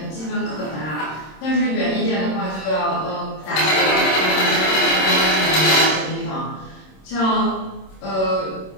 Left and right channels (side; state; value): right; late; 26 ms